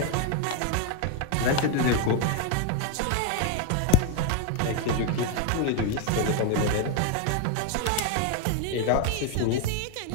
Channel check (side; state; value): both; different; correlation 0.01